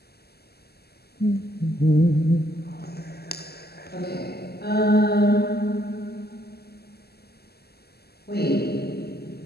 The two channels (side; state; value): right; late; 0.46 ms